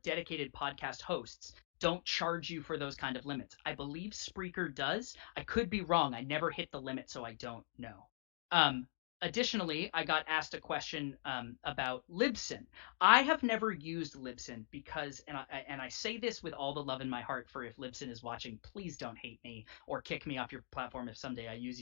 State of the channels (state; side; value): silent; right; digital silence